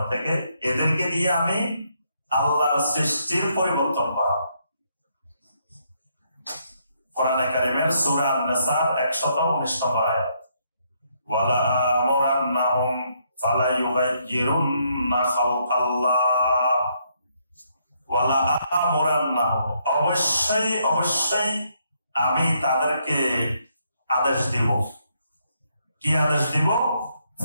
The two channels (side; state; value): both; inverted; correlation -0.74